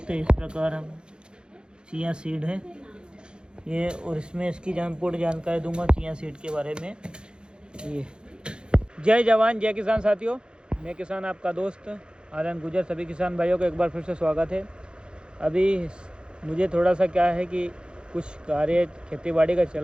हैं इस प्रकार हम चिया सीड है ये। और इसमें इसकी पूर्ण जानकारी दूंगा चिया सीड के बारे में ये। जय जवान जय किसान साथियों, मैं किसान आपका दोस्त आनंद गुजर। सभी किसान भाइयों को एक बार फिर से स्वागत है। अभी मुझे थोड़ा सा क्या है कि कुछ कार्य खेती बाड़ी का चल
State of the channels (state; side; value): late; left; 0.050 ms